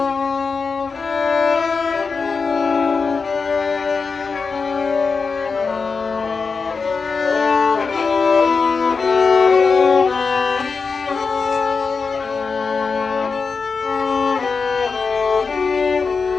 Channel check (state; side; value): quieter; right; 4.9 dB